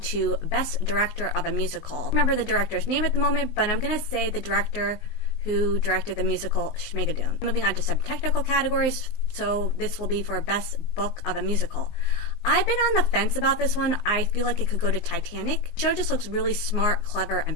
Best Director of a Musical. I don't remember the director's name at the moment, but I'm going to say the director who directed the musical Schmigadoon. Moving on to some technical categories, so this will be for Best Book of a Musical. I've been on the fence about this one. I feel like it could go to Titanic. The show just looks really smart, clever,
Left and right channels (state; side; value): late; right; 19 ms